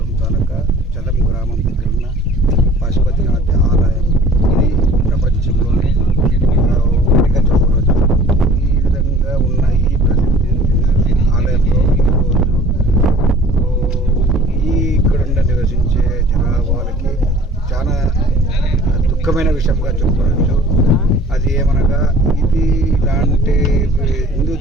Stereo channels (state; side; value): normal; both; correlation 0.48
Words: తాలూకా చదం గ్రామం దగ్గర ఉన్న పశుపతినాథ ఆలయం ఇది ప్రపంచంలోనే ఒకటిగా చెప్పవచ్చు. ఈ విధంగా ఉన్న ఈ ప్రసిద్ధి ఆలయంలో ఇక్కడ నివసించే జనాభాలకి చాలా దుఃఖమైన విషయంగా చెప్పుకోవచ్చు. అది ఏమనగా ఇది ఇలాంటి హిందూ